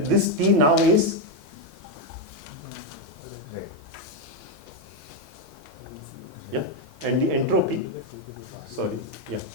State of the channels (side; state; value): both; normal; correlation 0.04